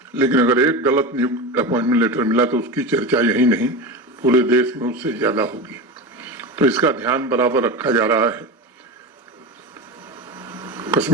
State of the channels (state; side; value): normal; both; correlation 0.24